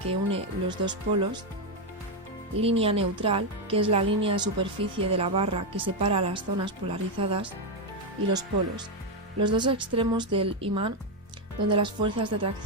une los dos polos; línea neutral, que es la línea de superficie de la barra que separa las zonas polarizadas; y los polos, los dos extremos del imán donde las fuerzas de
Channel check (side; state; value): both; normal; correlation 0.05